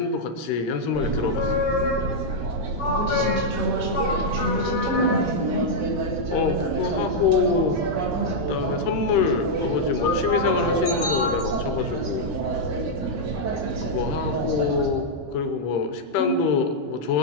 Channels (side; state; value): both; normal; correlation -0.05